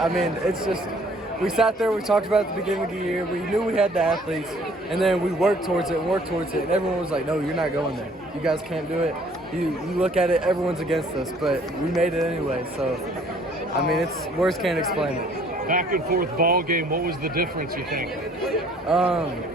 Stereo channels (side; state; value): both; normal; correlation 0.58